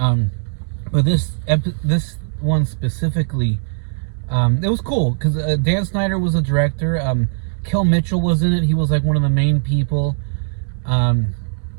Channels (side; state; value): left; silent; digital silence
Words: But this one specifically, it was cool because Dan Schneider was a director. Kel Mitchell was in it. He was like one of the main people.